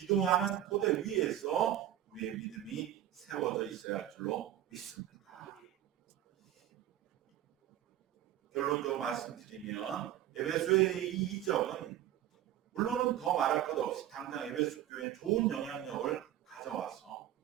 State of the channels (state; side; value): quieter; left; 12.4 dB